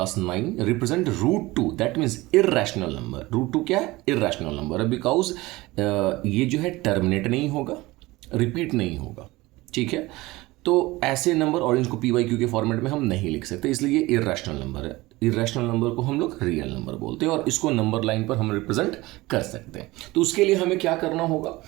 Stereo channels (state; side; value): quieter; left; 20.2 dB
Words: 9। Represent root two, that means irrational number. Root two क्या है? इर्रेशनल नंबर है, बिकॉज ये जो है टर्मिनेट नहीं होगा, रिपीट नहीं होगा। ठीक है, तो ऐसे नंबर और इनको पी वाई क्यू के फॉर्मेट में हम नहीं लिख सकते, इसलिए ये इर्रेशनल नंबर है। इर्रेशनल नंबर को हम लोग रियल नंबर बोलते हैं और इसको नंबर लाइन पर हम रिप्रेजेंट कर सकते हैं। तो उसके लिए हमें क्या करना होगा?